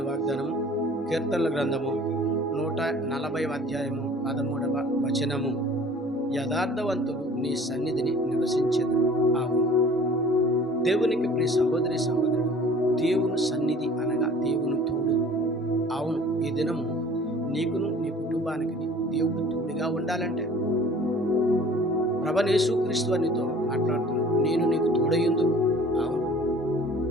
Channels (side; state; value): both; normal; correlation 0.48